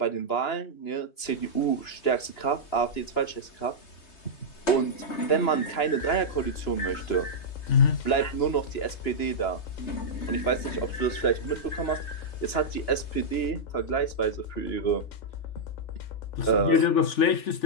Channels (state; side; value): late; right; 2.9 ms